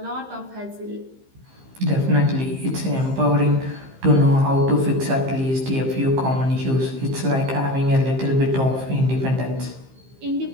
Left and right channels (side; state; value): left; late; 15 ms